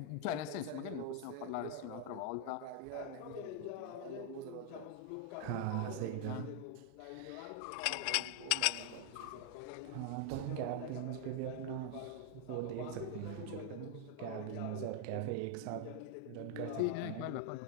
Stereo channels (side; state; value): both; different; correlation 0.00